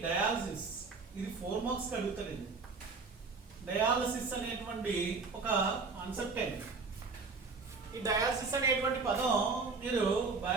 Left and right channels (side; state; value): left; quieter; 4.3 dB